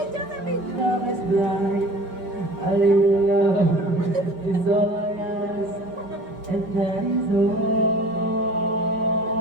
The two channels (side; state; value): left; late; 5.5 ms